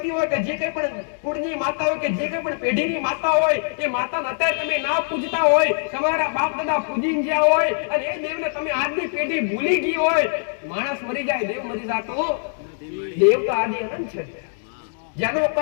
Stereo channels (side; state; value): right; silent; digital silence